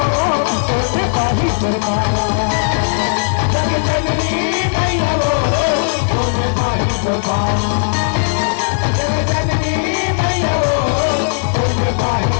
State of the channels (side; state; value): right; silent; digital silence